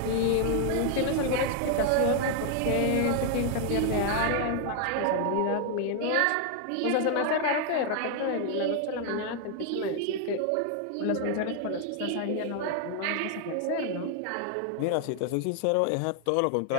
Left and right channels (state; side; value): different; both; correlation 0.00